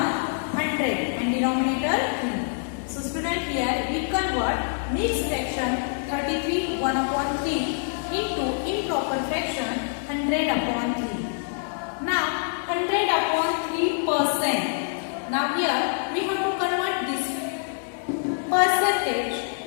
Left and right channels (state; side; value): silent; right; digital silence